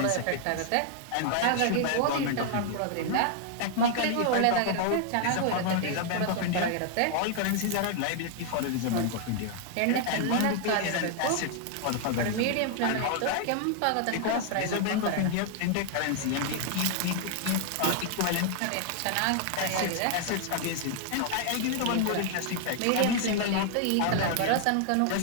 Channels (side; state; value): both; different; correlation 0.00